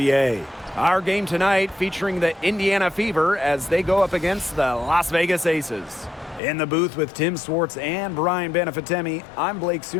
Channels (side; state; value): right; drops out; at 6.4 s